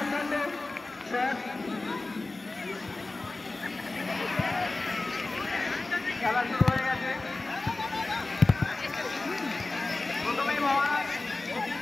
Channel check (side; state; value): right; quieter; 3.2 dB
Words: খেলা শুরু হয়ে গেছে। প্রথমেই মহারাজ